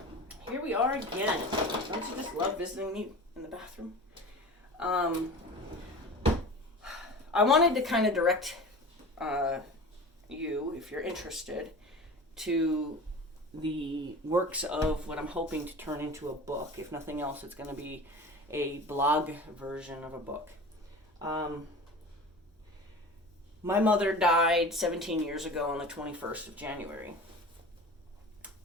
Here we are again. Don't you just love visiting me in the bathroom? I wanted to kind of direct you, if you're interested, to the works of what I'm hoping to turn into a book. If nothing else, it's going to be a blog version of a book. My mother died 17 years ago on the 21st of January.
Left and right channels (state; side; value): normal; both; correlation 0.36